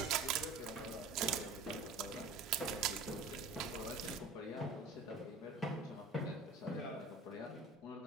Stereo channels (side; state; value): left; quieter; 3.6 dB